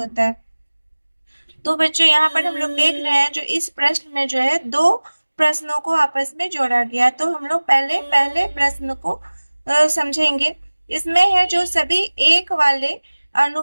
है। तो बच्चों यहाँ पर हम लोग देख रहे हैं जो इस प्रश्न में जो है 2 प्रश्नों को आपस में जोड़ा गया। तो हम लोग पहले प्रश्न को समझेंगे। इसमें है जो सभी एक वाले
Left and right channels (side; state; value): both; inverted; correlation -1.00